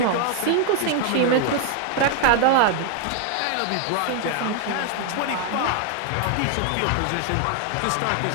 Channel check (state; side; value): different; both; correlation 0.00